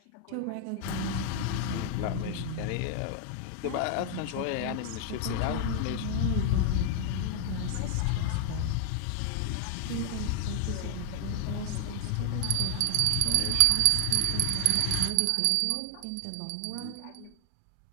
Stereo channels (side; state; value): both; different; correlation 0.00